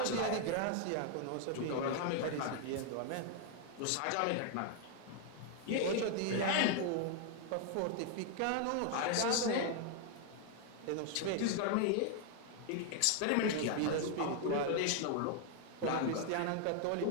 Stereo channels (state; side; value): different; both; correlation 0.00